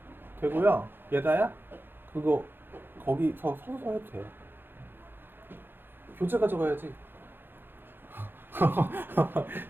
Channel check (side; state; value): left; late; 0.10 ms